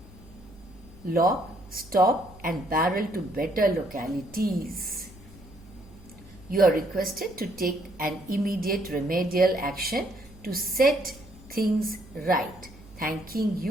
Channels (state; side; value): noise; right; hum, 22 dB below the sound